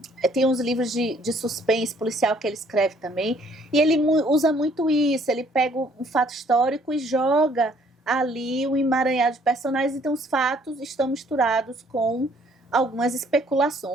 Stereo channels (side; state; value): both; normal; correlation 0.62